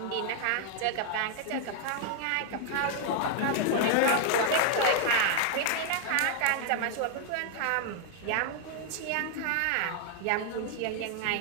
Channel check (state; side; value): different; both; correlation 0.00